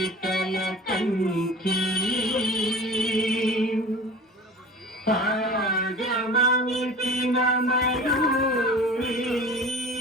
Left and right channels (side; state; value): both; normal; correlation 0.39